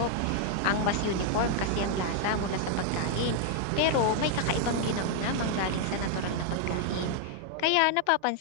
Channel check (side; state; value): both; different; correlation 0.00